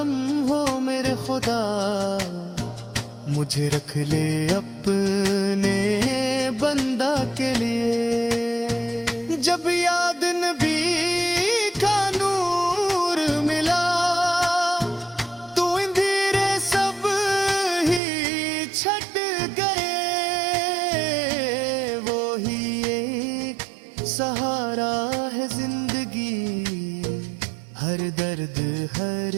ہو میرے خدا، مجھے رکھ لے اپنے بندہ کے لیے۔ جب یاد نبی کا نور ملا تو اندھیرے سب ہی چھٹ گئے، وہی ایک سہارا ہے زندگی، ہر درد ہر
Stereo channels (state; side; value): drops out; left; at 18.0 s